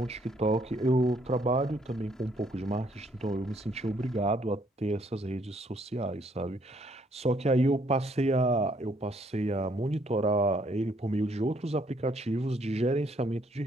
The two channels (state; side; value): normal; both; correlation 0.68